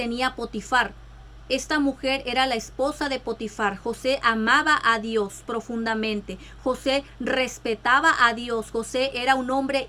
Potifar. Esta mujer era la esposa de Potifar. José amaba a Dios profundamente. José respetaba a Dios. José era un hombre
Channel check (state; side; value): identical; both; correlation 1.00